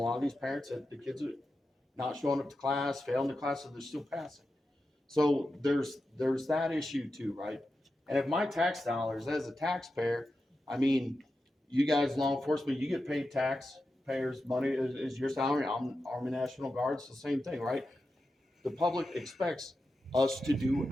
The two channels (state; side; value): normal; both; correlation 0.90